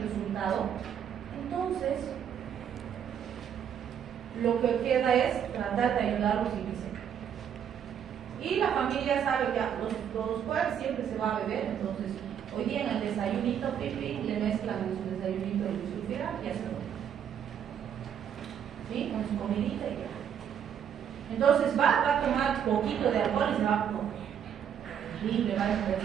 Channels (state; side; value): quieter; left; 8.7 dB